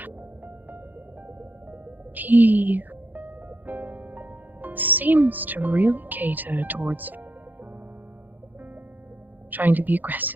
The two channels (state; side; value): late; left; 0.085 ms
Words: He seems to really cater towards trying to be